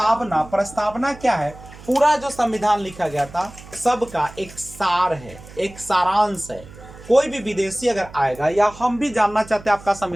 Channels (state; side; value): noise; right; hum, 18 dB below the sound